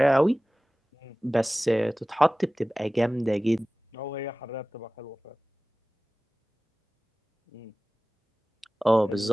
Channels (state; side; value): normal; both; correlation 0.97